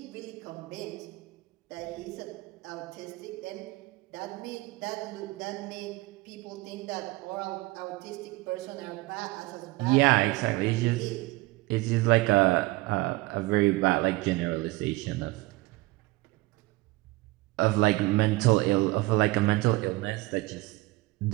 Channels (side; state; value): left; quieter; 21.5 dB